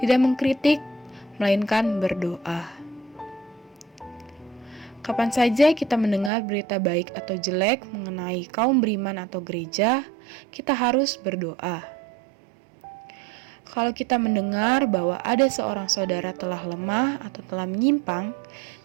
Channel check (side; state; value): left; drops out; at 6.3 s